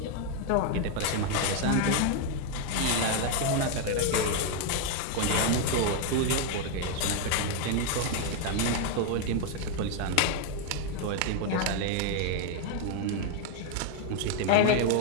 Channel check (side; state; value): both; different; correlation 0.01